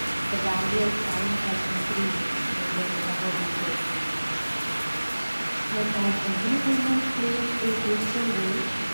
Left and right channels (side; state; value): both; inverted; correlation -1.00